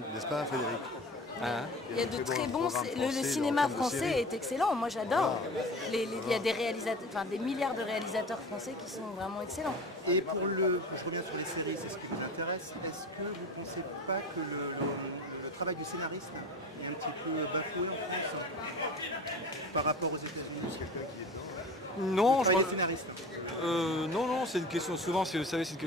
n'est-ce pas, Frédéric? Hein? Il y a de très bons. programmes Le français cinéma en termes de français séries. est excellent. Moi, j'adore. Il y a des réalisateurs, enfin des milliards de réalisateurs français qui sont vraiment excellents. Et pour je reviens sur les séries, c'est ce qui vous intéresse, est-ce que vous ne pensez pas que le travail du scénariste est un petit peu bafoué en France par rapport aux États-Unis? Non, je Travail pense... des scénaristes. non, c'est une question, souvent, vous savez, c'est une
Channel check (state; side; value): normal; both; correlation 0.35